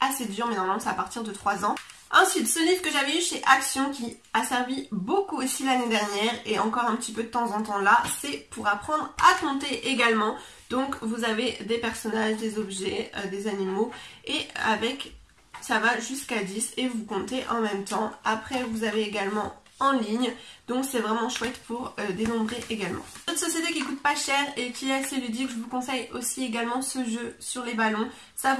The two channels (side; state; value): both; identical; correlation 1.00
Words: assez dur, mais normalement c'est à partir de 3 ans. Ensuite, ce livre que j'avais eu chez Action qui a servi beaucoup aussi l'année dernière et encore un petit peu de temps en temps là, c'est pour apprendre à compter également. Donc vous avez des personnages, des objets, des animaux, et avec ça va jusqu'à 10 et vous comptez en même temps. Après vous avez également en ligne, donc c'est vraiment chouette pour dénombrer également. Une autre société qui coûte pas cher et qui est assez ludique, je vous conseille aussi également ce jeu sur les ballons. Ça